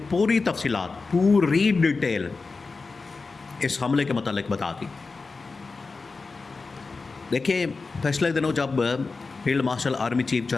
पूरी तफसीलात, पूरी डिटेल इस हमले के मतलब बता दी। देखिए, पिछले दिनों जब field marshal army chief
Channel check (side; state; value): right; quieter; 4.1 dB